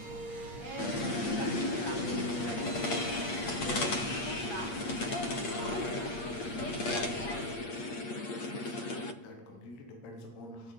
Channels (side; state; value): right; late; 8.5 ms